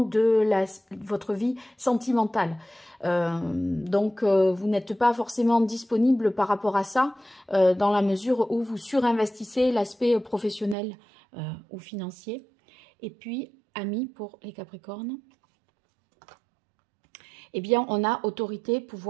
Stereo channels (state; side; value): drops out; left; at 10.8 s